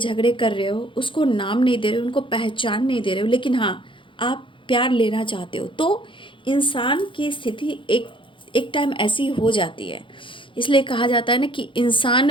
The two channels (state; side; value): late; right; 0.25 ms